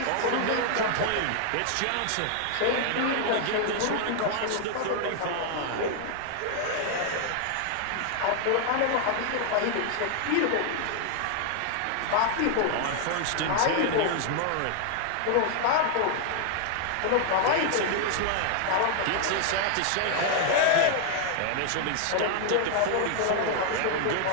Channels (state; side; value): different; both; correlation 0.00